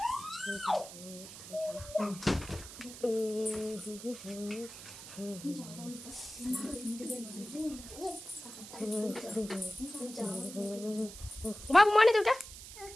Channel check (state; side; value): noise; right; hiss, 13 dB below the sound